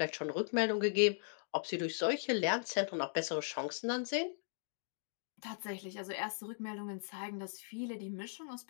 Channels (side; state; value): right; silent; digital silence